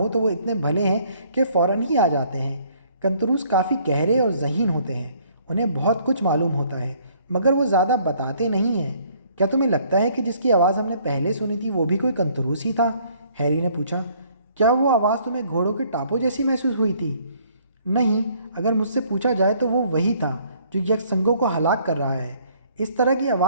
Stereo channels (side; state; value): both; inverted; correlation -0.62